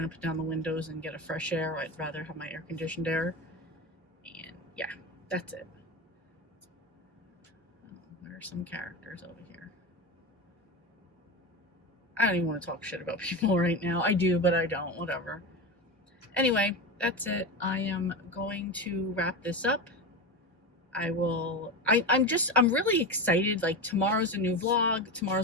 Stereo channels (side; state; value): both; normal; correlation 0.21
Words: to put down the windows and get a fresh air. I'd rather have my air conditioned air. And yeah, that's it. There are some characters over here. I don't even want to talk shit about people right now. I do, but I don't. Whatever. Anyway, that's it. I am going to wrap this up. I'm really excited. Like, tomorrow's a new vlog.